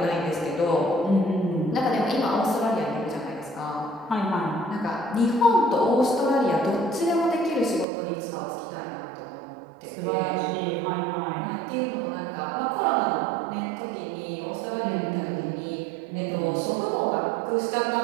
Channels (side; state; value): left; drops out; at 7.9 s